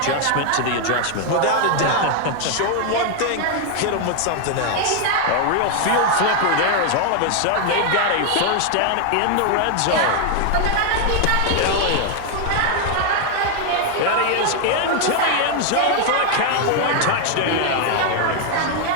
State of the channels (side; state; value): both; different; correlation 0.00